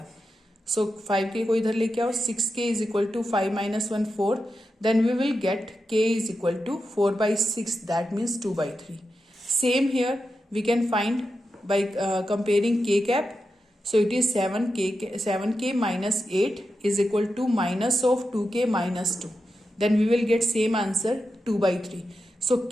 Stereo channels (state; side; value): normal; both; correlation 0.88